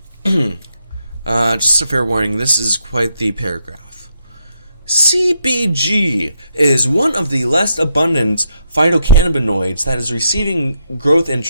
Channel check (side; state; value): both; inverted; correlation -0.78